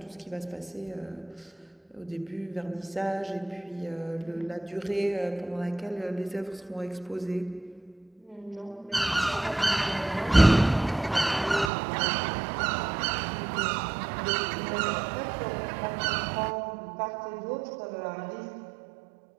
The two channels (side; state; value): left; drops out; at 11.7 s